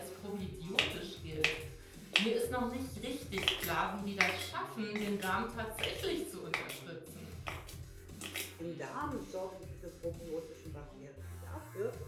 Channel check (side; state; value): both; identical; correlation 1.00